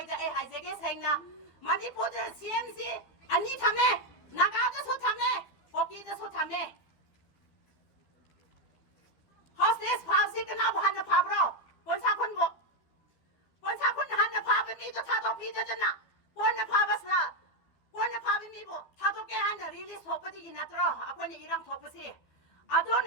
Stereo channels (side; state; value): right; late; 12 ms